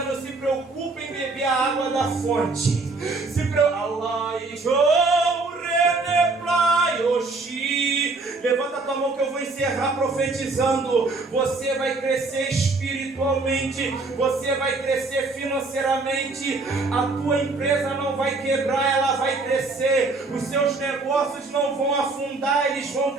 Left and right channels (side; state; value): left; quieter; 3.6 dB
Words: se preocupe em beber a água da fonte. Se preocupe. Levanta a tua mão que eu vou encerrar profetizando. Você vai crescer espiritualmente, você vai crescer financeiramente. A tua empresa não vai quebrar, ela vai crescer. Os seus negócios não vão afundar, eles vão